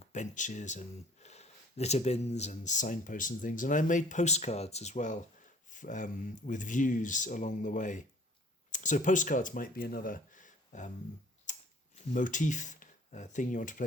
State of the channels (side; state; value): both; normal; correlation 0.53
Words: benches and litter bins and signposts and things, and I made postcards as well with views along the way. So postcards might be another motif thing you want to